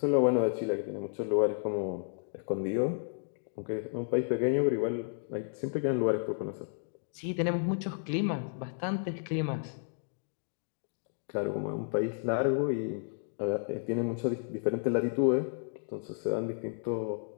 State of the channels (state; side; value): silent; right; digital silence